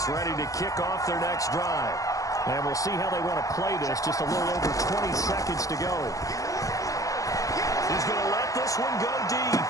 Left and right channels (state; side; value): late; right; 0.16 ms